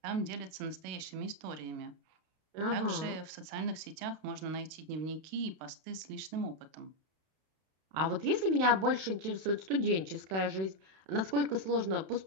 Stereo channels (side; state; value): left; late; 32 ms